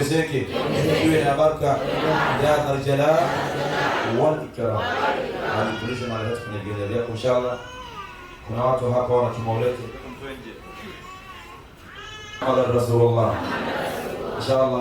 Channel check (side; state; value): both; identical; correlation 1.00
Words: iwe na baraka, ya Dhal Jalal wal Ikram. Alitulisha mara yote kwenye gari yako inshallah. Kuna watu hapa wana kimaulete Muhammad Rasulullah